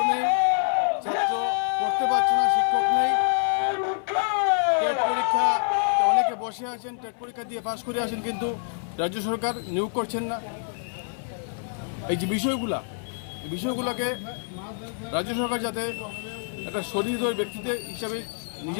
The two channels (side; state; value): right; silent; 61 dB below the other